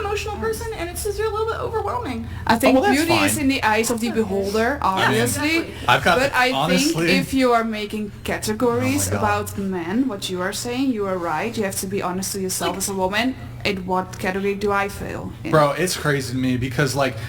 person, and it's just a little bit overwhelming. I think well, that's beauty is fine. in the eyes of the beholder, obviously. Exactly. I've got But I honestly, think if you are making categories Oh my God. about men, what you are saying, you are right. You have to be honest to yourself as a woman. In what category do I fail in? bro, it's crazy to me because like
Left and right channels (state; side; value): identical; both; correlation 1.00